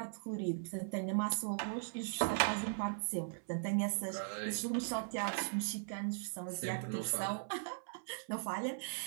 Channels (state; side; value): silent; left; 52 dB below the other